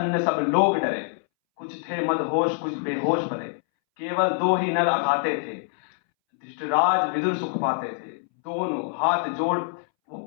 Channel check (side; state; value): right; silent; 62 dB below the other